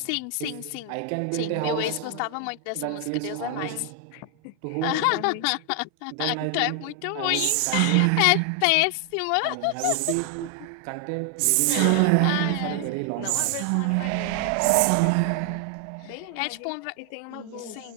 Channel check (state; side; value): different; both; correlation 0.00